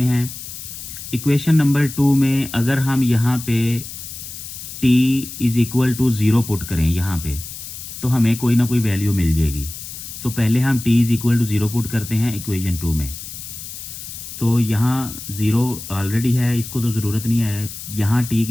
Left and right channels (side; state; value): left; noise; hiss, 11 dB below the sound